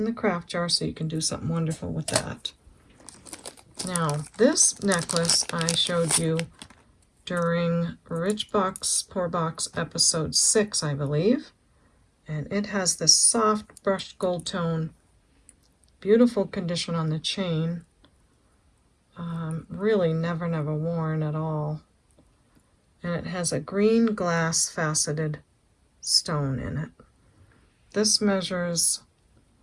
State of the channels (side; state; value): both; identical; correlation 1.00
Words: the craft jar so you can do something wonderful with that. Now, this necklace I showed you during Rich Box, Poor Box episode 6, I believe. And it has this soft brushed gold tone, beautiful condition on the chain. Really never worn at all. and it has a green glass faceted stone in it. This measures